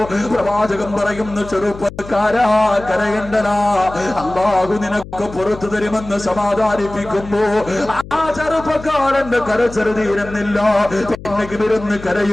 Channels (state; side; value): noise; left; hum, 15 dB below the sound